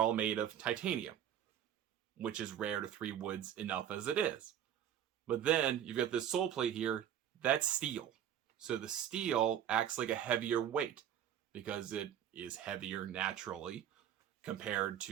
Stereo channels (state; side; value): quieter; left; 10.1 dB